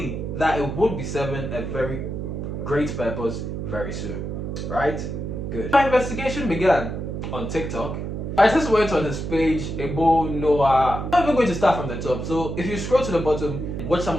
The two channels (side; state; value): right; noise; hum, 5 dB below the sound